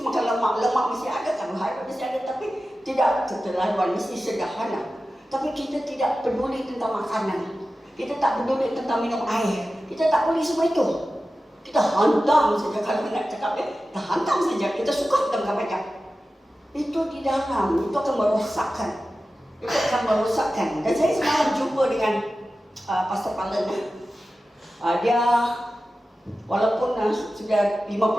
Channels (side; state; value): both; normal; correlation 0.94